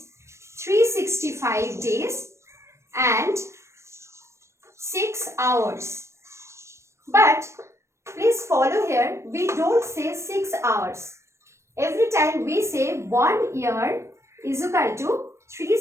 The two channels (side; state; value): left; late; 0.13 ms